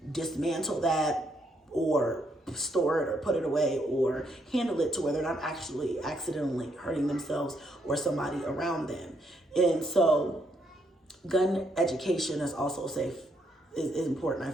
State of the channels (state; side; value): normal; both; correlation 0.74